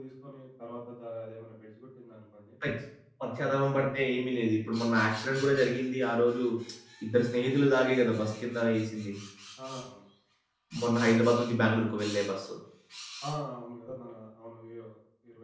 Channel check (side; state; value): both; identical; correlation 1.00